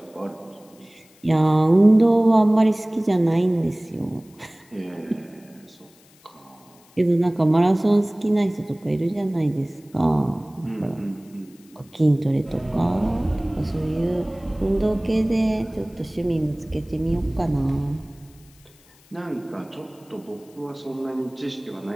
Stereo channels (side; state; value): left; noise; hiss, 29 dB below the sound